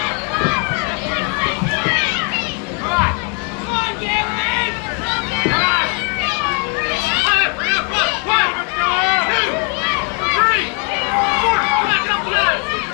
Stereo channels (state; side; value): quieter; right; 35.4 dB